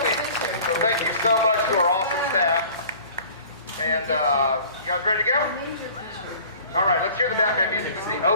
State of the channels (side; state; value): both; inverted; correlation -0.47